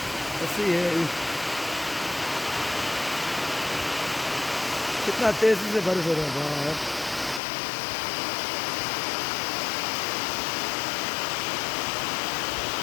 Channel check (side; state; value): right; drops out; at 7.4 s